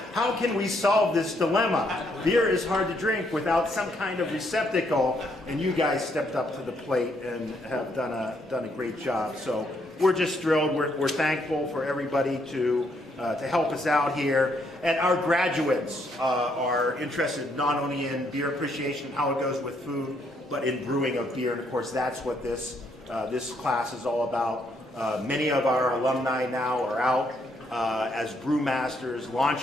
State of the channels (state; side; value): normal; both; correlation 0.73